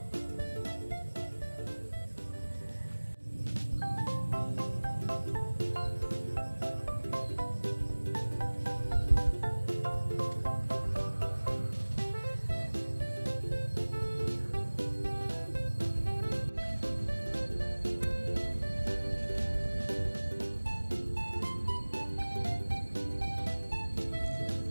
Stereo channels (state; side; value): inverted; both; correlation -1.00